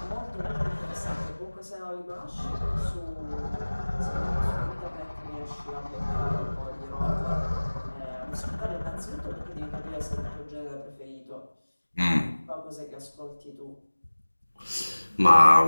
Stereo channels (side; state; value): both; inverted; correlation -1.00